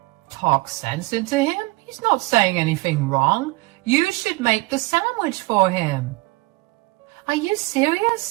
Talk sense into him? He's not saying anything wrong. You should make the sandwich for him. Are you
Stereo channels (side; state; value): left; quieter; 22.5 dB